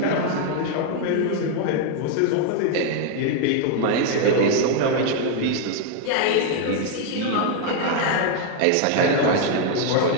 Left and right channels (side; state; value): both; different; correlation 0.01